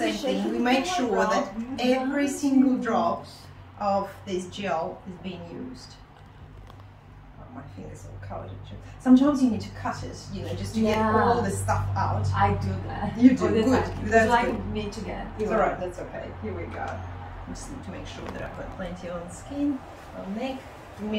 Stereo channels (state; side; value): identical; both; correlation 1.00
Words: thing. We make sure that every single drop of this gel is being used. Oh, my fingers all covered. Sometimes you need to cut it, you know, just to get all the stuff out. I do that. You do, good. That's like good. Me to get. It's alright, that's okay. Here we go. I just need to make sure that I've got plenty on the skin, on neck. Give me